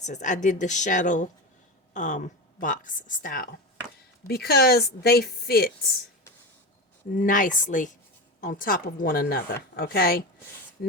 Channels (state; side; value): normal; both; correlation 0.22